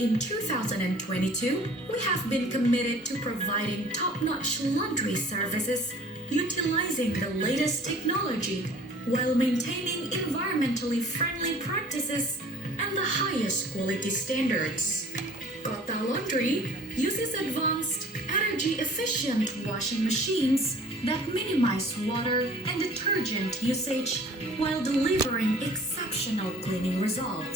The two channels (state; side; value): normal; both; correlation 0.48